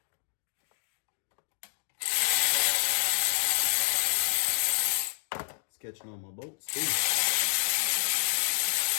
Catching on my bolts too,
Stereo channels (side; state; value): right; silent; digital silence